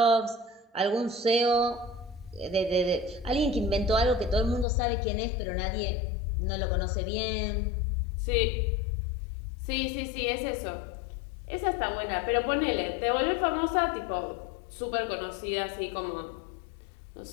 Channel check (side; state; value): right; drops out; at 4.7 s